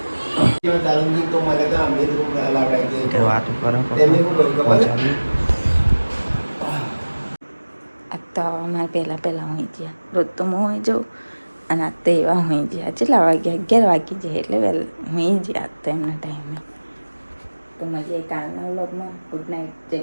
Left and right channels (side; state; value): both; inverted; correlation -1.00